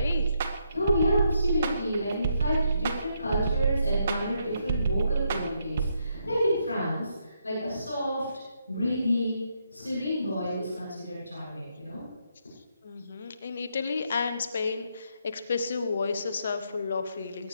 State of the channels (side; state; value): both; inverted; correlation -0.77